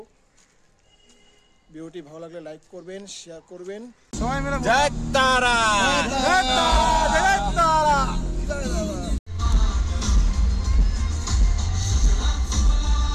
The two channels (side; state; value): both; identical; correlation 1.00